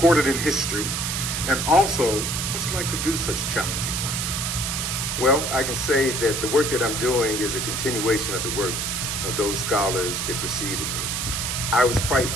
in history? And also, what's it like to do such challenging work? Well, I can say that the work that I'm doing is a continuation of the work of those scholars that preceded me. I was quite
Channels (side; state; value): right; noise; hiss, 1 dB below the sound